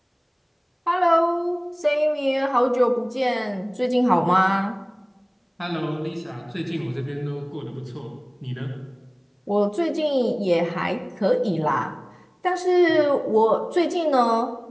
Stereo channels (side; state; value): both; identical; correlation 1.00